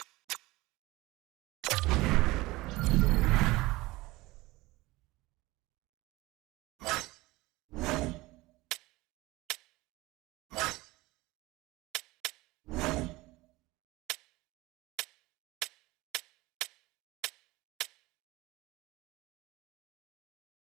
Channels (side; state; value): left; quieter; 20.2 dB